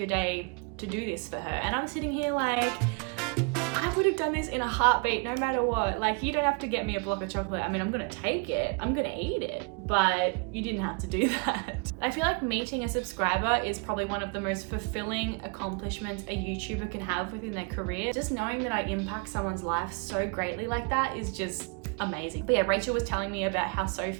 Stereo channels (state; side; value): quieter; left; 33.2 dB